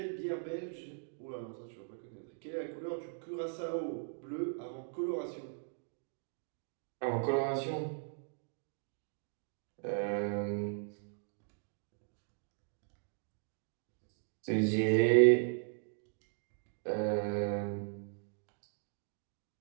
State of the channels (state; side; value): silent; left; digital silence